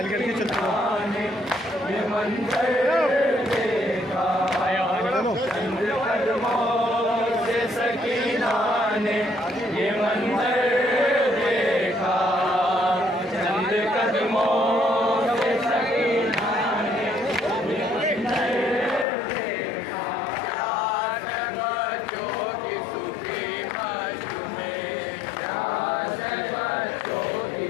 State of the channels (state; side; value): drops out; right; at 19.1 s